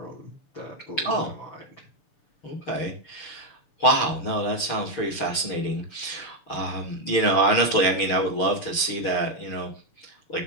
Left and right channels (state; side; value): late; right; 6.5 ms